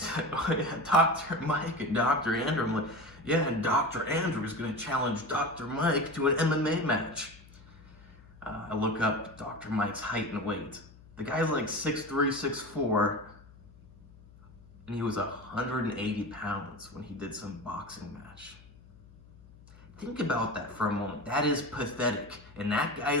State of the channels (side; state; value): left; noise; hum, 23 dB below the sound